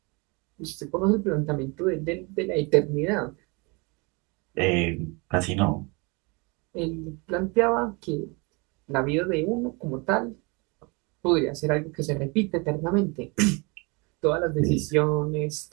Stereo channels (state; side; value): quieter; left; 29.0 dB